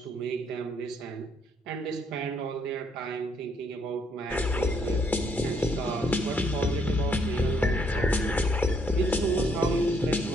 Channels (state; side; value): normal; both; correlation 0.70